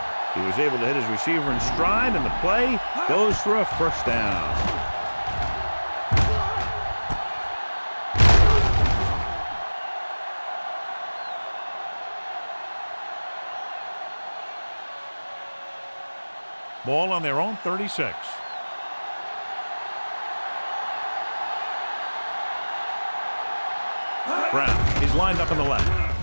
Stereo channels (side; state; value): both; inverted; correlation -1.00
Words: He was able to hit his receiver in stride, and the play goes for a first down. Ball on their own 36. Brown is lined up on the left.